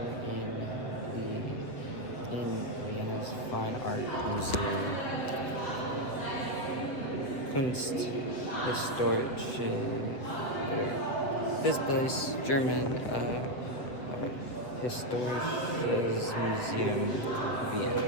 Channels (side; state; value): right; late; 8.0 ms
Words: in Vienna's Fine Art Museum. Kunsthistorische. This place, German Historisches Museum,